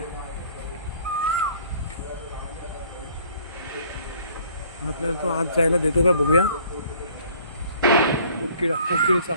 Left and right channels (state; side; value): inverted; both; correlation -0.56